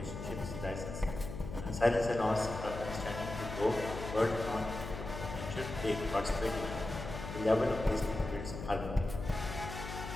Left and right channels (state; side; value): noise; left; hum, 8 dB below the sound